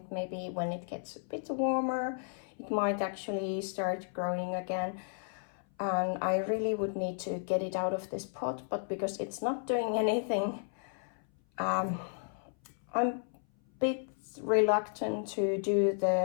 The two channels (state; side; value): silent; right; 55 dB below the other